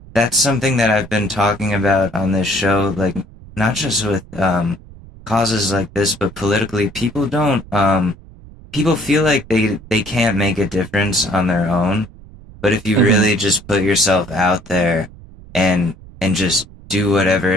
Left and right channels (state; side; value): noise; right; rumble, 20 dB below the sound